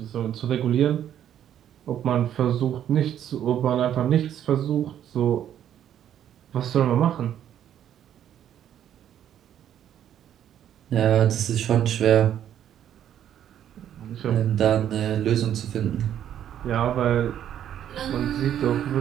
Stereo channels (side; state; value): left; quieter; 10.4 dB